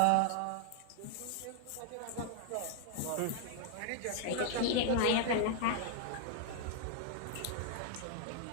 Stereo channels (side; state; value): both; different; correlation 0.00